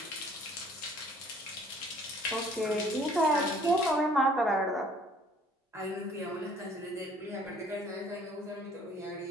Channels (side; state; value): both; normal; correlation 0.56